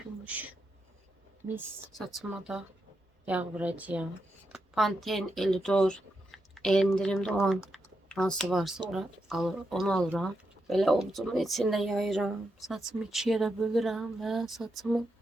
Mis. Saçıma da yağ vuracağım. Pantene, Elidor, endirimde olan hansı varsa onu alıram. Böyle ovucumun içinde yayıram. Saçımı ikiye de bölürəm və saçımın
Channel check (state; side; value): normal; both; correlation 0.85